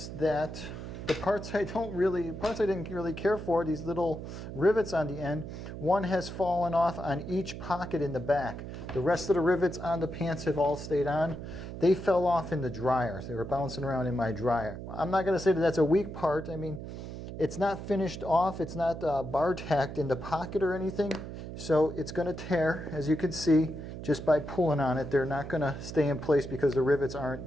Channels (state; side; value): noise; right; hum, 9 dB below the sound